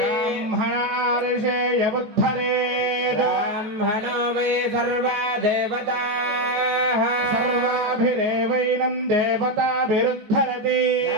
బుద్ధరేద బ్రాహ్మణో వై సర్వా దేవతాః సర్వాభిరేవైనం దేవతాభిరుద్ధరతి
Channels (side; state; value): left; late; 14 ms